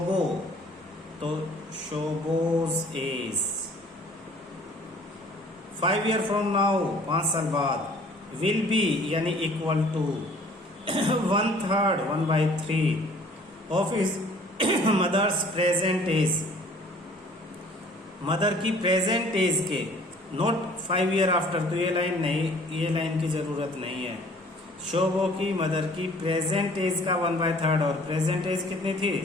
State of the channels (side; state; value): both; normal; correlation 0.53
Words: तो Shobho's age 5 year from now, 5 साल बाद, विल बी यानी equal to 1/3 1/3 of his mother's present age. Mother की प्रेजेंट एज के, नॉट 5 ईयर आफ्टर। तो ये लाइन नहीं, ये लाइन की जरूरत नहीं है। शोभो की मदर की प्रेजेंट एज का 1/3 और प्रेजेंट एज कितनी थी?